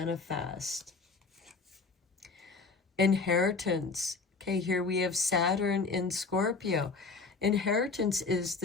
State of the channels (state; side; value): quieter; right; 4.3 dB